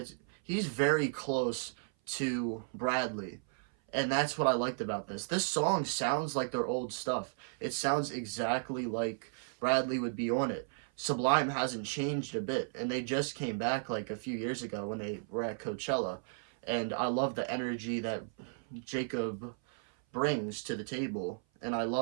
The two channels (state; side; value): silent; left; 55 dB below the other